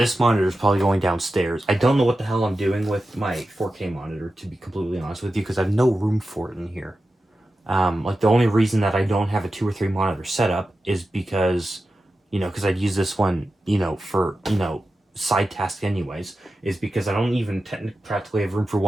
monitor is probably going downstairs. I don't know what the hell I'm doing with my 4K monitor, to be completely honest with you, because I have no room for it in here. Like, the only reason that I don't have a 2 or 3 monitor setup is because, you know, because I'd use this one, you know, for, you know, side task anyways, is because I don't even practically have room for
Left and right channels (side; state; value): both; normal; correlation 0.92